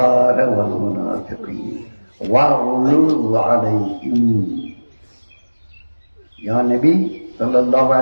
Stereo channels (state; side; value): inverted; both; correlation -1.00